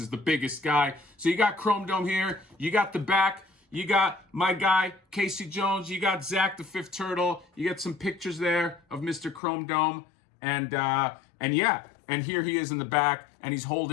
the biggest guy. So you got Chrome Dome here. You got the back. You got my guy, Casey Jones. You got Zach the Fifth Turtle. You got some pictures there of Mr. Chrome Dome. And yeah, and here he is in the back, and he's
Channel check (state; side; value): drops out; right; at 9.4 s